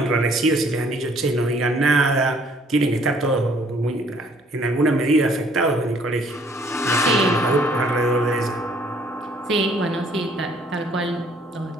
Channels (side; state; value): both; normal; correlation 0.61